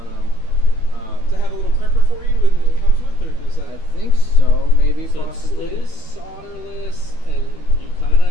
them. To have a little crimper for you, it comes with, or does that? I think so. Maybe So possibly. it is solderless, and you kind of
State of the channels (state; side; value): late; right; 13 ms